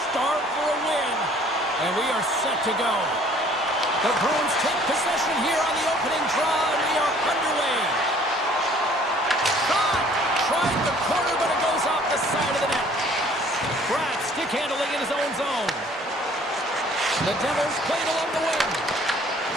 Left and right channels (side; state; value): both; normal; correlation 0.56